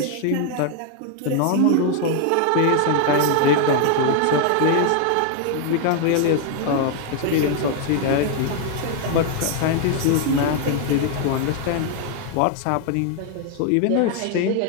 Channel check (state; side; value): different; both; correlation 0.00